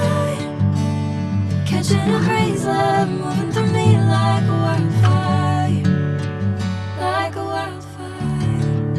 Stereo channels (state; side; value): identical; both; correlation 1.00